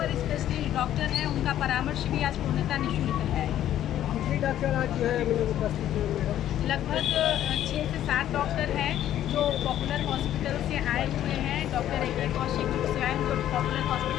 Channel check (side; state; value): right; quieter; 11.9 dB